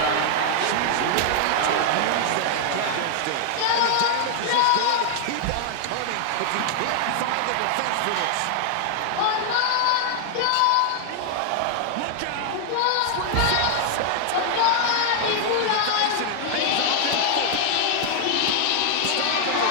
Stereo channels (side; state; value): both; different; correlation 0.00